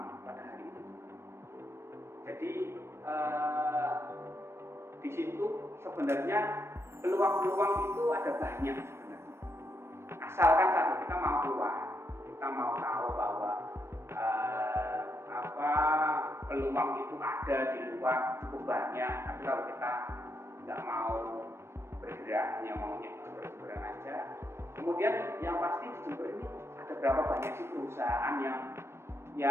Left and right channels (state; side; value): late; left; 0.12 ms